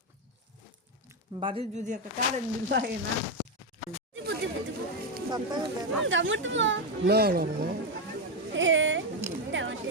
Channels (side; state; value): both; normal; correlation 0.07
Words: বাড়ির যদি একটা কারেন্ট বিল লাগে না না না না